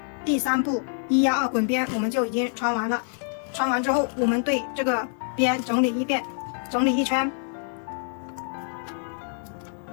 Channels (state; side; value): silent; right; 61 dB below the other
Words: 第3步1压2滚边我们就已经穿完了。穿完之后，我们对这个边整理一遍，整理一圈。